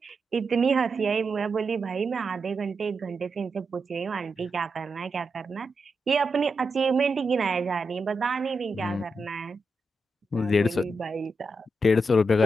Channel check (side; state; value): both; normal; correlation 0.86